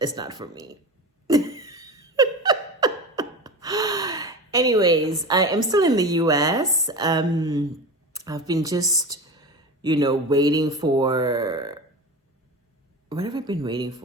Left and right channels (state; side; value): normal; both; correlation 0.28